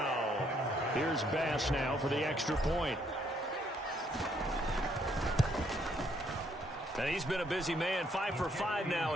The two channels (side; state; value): both; normal; correlation 0.70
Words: Here's Bass now for the extra point. And he's been a busy man, 5 for 5 now